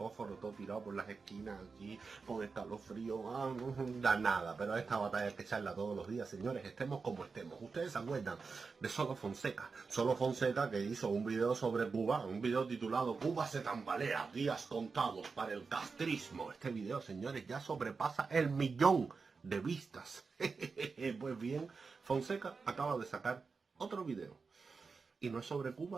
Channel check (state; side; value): quieter; left; 4.7 dB